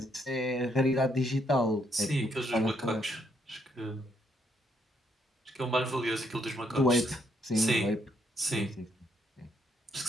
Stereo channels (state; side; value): normal; both; correlation 0.73